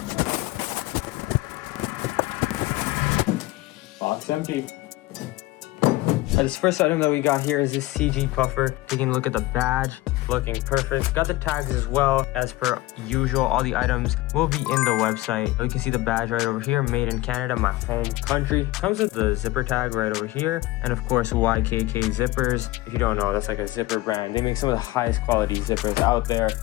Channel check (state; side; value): quieter; right; 18.8 dB